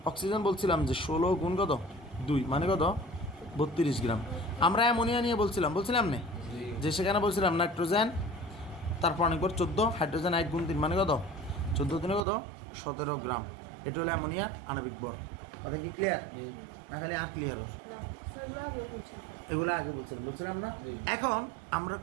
অক্সিজেন বলছিলাম যে 16 গুণ কত? 2 মানে কত? 32 গ্রাম। আমরা অ্যামোনিয়া নিয়ে বলছিলাম না যে সেখানে বলছিলাম নাইট্রোজেন তার পারমাণবিক ভর 14, হাইড্রোজেন 1 গুণ 3 মানে কত? 14 দিনে কত? 17 গ্রাম। এটা হলো অ্যামোনিয়ার আণবিক ভর। কথা কি ক্লিয়ার? না খালি আর ক্লিয়ার হোক? এগুলো আগে বলছিলাম না? এখন আমরা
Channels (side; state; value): left; drops out; at 12.2 s